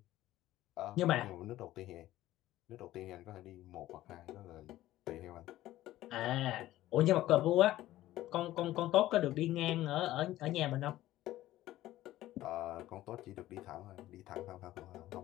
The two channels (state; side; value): quieter; right; 15.0 dB